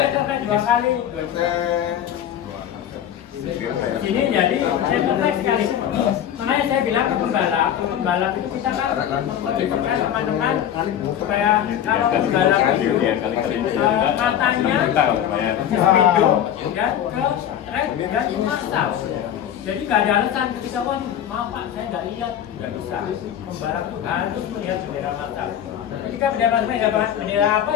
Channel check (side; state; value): right; quieter; 10.2 dB